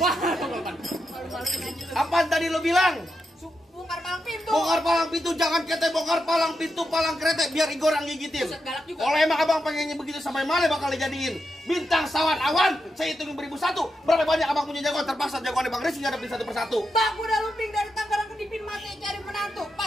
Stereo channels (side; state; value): both; normal; correlation 0.86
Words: Apa tadi lo bilang? bongkar palang pintu. Bongkar palang pintu, jangan kete bongkar palang pintu, palang kereta biar Igor yang gigitin. Buset, galak juga. Kalau emang abang pengennya begitu sampai mana bakal dijadiin bintang sawan awan, saya hitungin 1001. Berapa banyak abang punya jagoan? Terpaksa jagoan Bang Rizky ngadepin satu persatu. Bang, udah lumping dari Tangerang ke Dipin mati cari menantu.